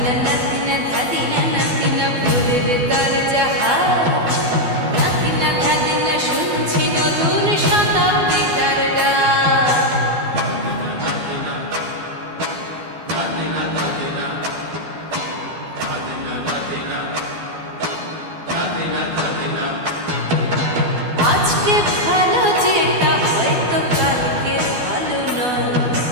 নাতিনা ধাদিনা নাতিনা ভোরের দরজা হাত, নাতিনা ধাদিনা শুনছি নতুন শতাব্দীটার ডাক। আজকে ভালো যেটা হয়তো কালকে ভালো নয়,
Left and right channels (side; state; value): left; late; 12 ms